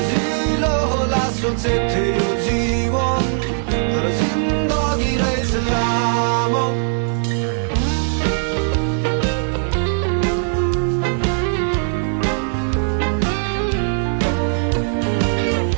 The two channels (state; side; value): silent; left; digital silence